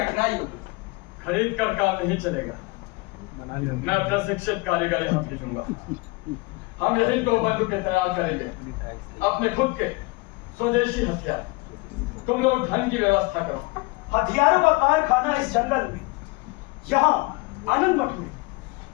होगी। खरीद कर काम नहीं चलेगा। मैं प्रशिक्षित कारीगर यहाँ भेजूंगा। हम यही तो बंदूकें तैयार करेंगे, अपने खुद के स्वदेशी हथियार। तुम लोग धन की व्यवस्था करो। हथियारों का कारखाना इस जंगल में, यहाँ आनंद मठ में।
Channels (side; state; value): right; quieter; 24.9 dB